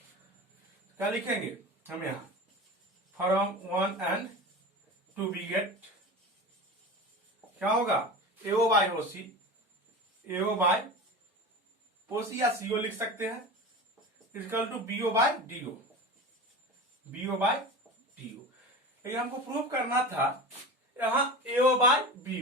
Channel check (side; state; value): both; normal; correlation 0.31